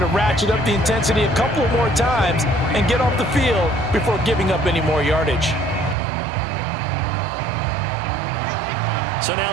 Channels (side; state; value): left; drops out; at 6.0 s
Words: ratchet up the intensity a couple of more times and get off the field before giving up any more yardage. So